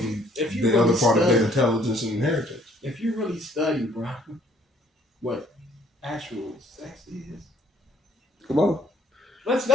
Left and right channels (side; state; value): both; normal; correlation 0.62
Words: the other part of their intelligence and inheritance. If you really study, bro, what actual sex is, Come on. let's